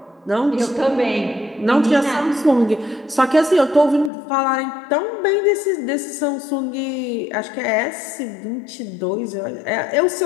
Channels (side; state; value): right; drops out; at 4.1 s